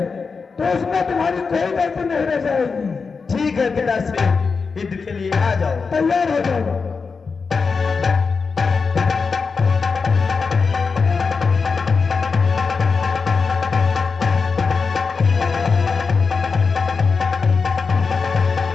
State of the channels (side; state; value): right; quieter; 5.0 dB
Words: तो उसमें तुम्हारी कोई गलती नहीं रह जाएगी। ठीक है पिताश्री, युद्ध के लिए आ जाओ। तैयार हो जाओ।